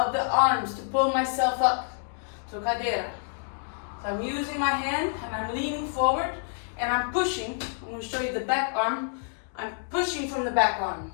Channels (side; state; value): right; silent; digital silence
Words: the arms to pull myself up to cadeira. So I'm using my hand and I'm leaning forward and I'm pushing. I'm going to show you the back arm. I'm pushing from the back arm,